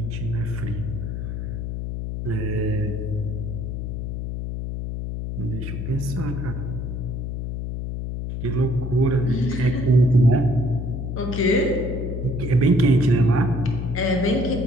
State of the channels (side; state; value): left; noise; hum, 4 dB below the sound